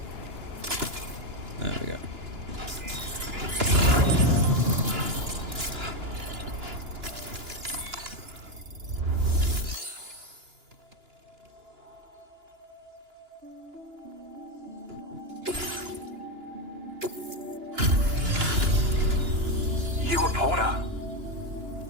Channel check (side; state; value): left; late; 2.9 ms